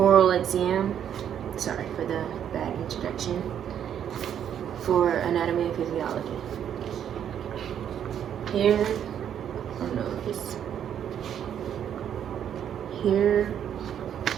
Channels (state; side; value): quieter; left; 9.4 dB